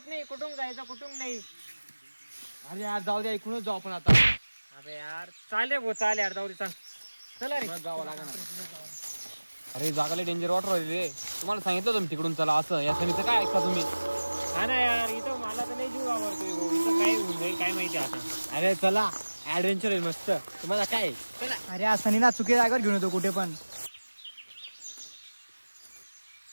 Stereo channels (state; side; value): inverted; both; correlation -1.00